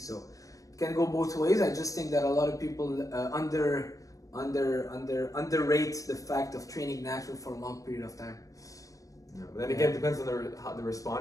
So it can go both ways. I just think that a lot of people underrate the fact of training natural for a long period of time. Yeah, but then again, it depends on the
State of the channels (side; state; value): right; late; 0.16 ms